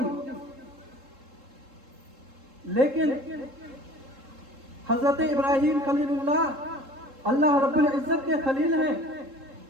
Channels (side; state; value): left; late; 3.7 ms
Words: لیکن حضرت ابراہیم خلیل اللہ اللہ رب العزت کے خلیل ہیں،